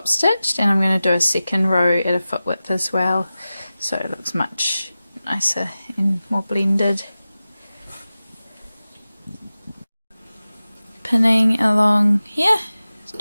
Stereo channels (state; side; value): inverted; both; correlation -0.95